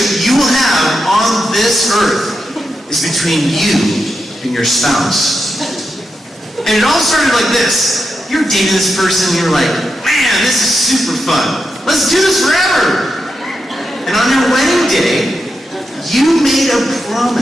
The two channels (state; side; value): normal; both; correlation 0.86